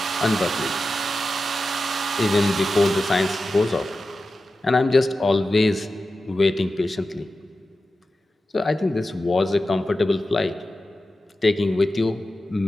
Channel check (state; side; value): normal; both; correlation 0.93